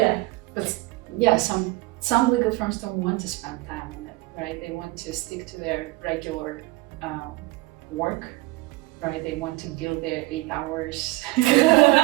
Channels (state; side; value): quieter; left; 21.9 dB